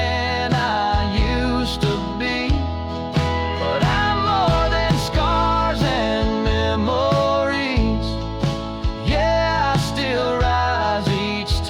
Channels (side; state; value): both; identical; correlation 1.00